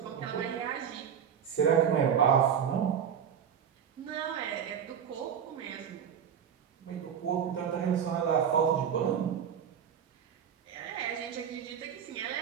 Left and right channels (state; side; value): quieter; left; 8.2 dB